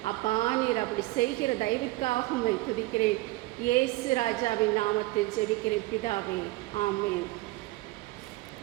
அப்பா, நீர் அப்படி செய்கிற தயவிற்காக உம்மை துதிக்கிறேன். இயேசு ராஜாவின் நாமத்தில் ஜெபிக்கிறேன் பிதாவே, ஆமென்.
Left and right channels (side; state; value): left; quieter; 20.1 dB